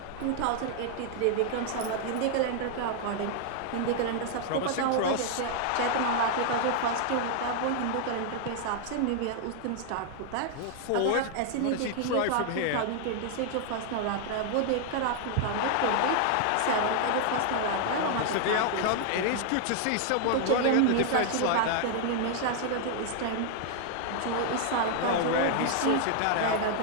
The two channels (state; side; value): different; both; correlation 0.00